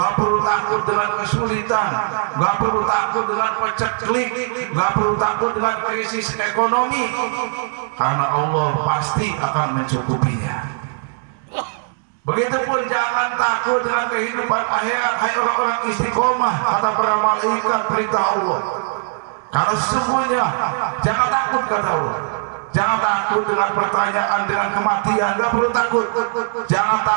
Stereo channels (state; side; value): silent; left; digital silence